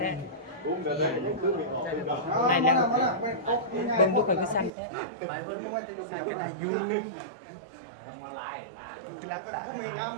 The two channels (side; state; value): left; drops out; at 4.7 s